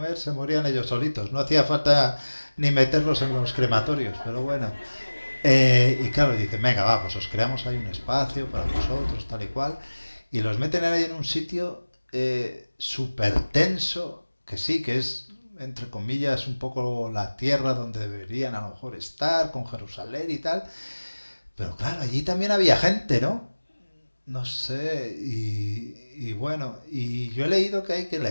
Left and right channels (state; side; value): inverted; both; correlation -1.00